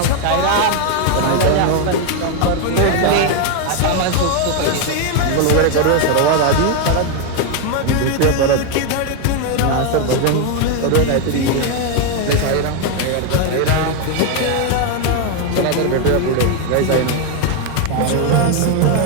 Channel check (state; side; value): different; both; correlation 0.01